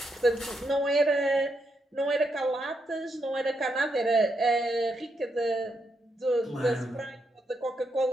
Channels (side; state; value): both; normal; correlation 0.81